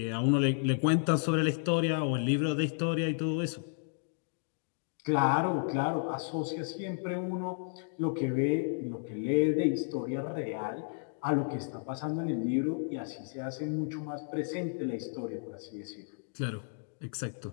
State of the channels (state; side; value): silent; right; digital silence